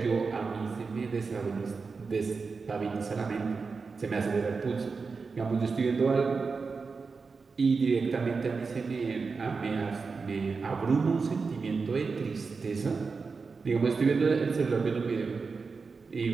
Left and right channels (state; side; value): quieter; left; 4.7 dB